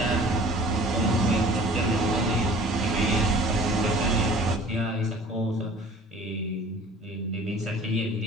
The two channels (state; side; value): normal; both; correlation 0.48